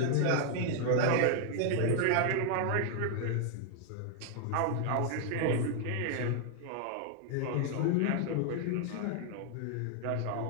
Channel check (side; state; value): both; different; correlation 0.00